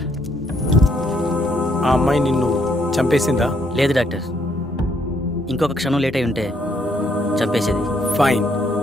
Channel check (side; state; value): both; normal; correlation 0.71